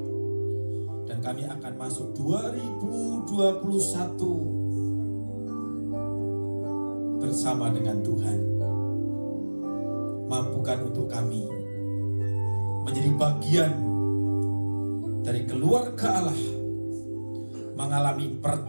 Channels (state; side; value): inverted; both; correlation -1.00